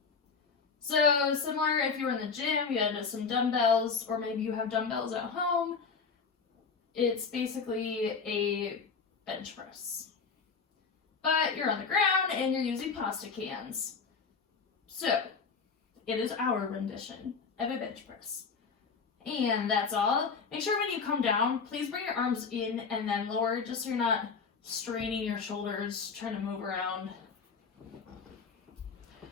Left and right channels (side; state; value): right; quieter; 5.2 dB